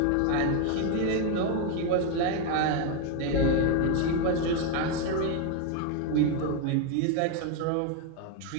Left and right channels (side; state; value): both; different; correlation 0.01